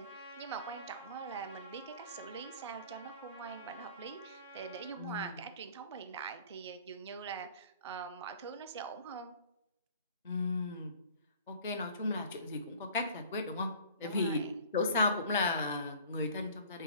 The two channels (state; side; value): inverted; both; correlation -0.48